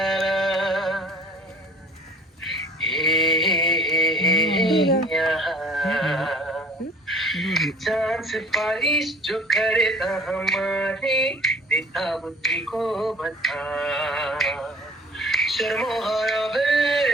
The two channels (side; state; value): both; normal; correlation 0.49